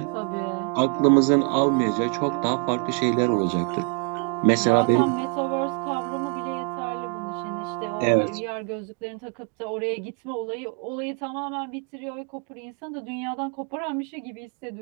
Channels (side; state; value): left; quieter; 39.6 dB